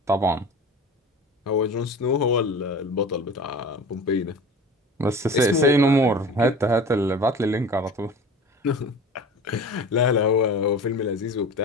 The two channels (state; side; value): normal; both; correlation 0.37